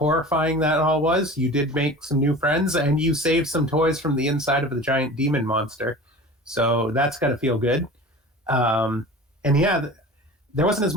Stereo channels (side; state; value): both; normal; correlation 0.38